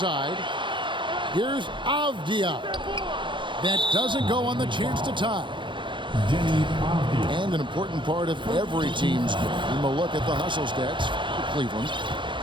Here's Avdia. That doesn't go on the chance to tie. And an important part of every team's game. A look at the hustle stats for Cleveland.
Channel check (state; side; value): late; left; 0.23 ms